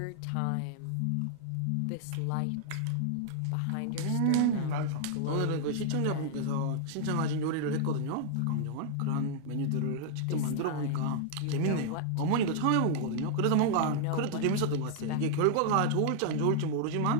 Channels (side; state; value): both; different; correlation 0.00